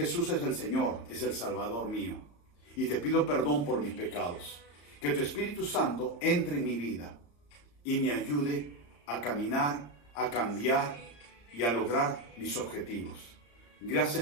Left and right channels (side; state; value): right; late; 34 ms